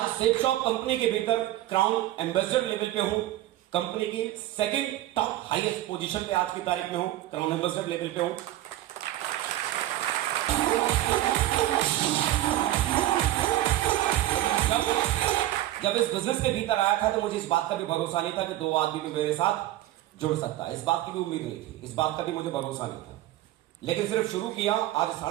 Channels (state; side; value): quieter; left; 14.7 dB